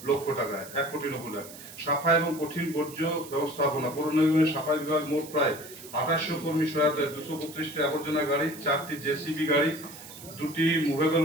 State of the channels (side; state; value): right; noise; hiss, 16 dB below the sound